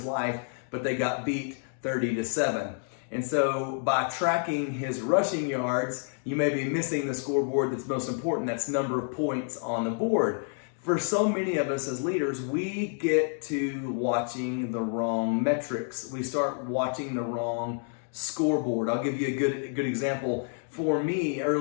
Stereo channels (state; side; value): silent; right; 56 dB below the other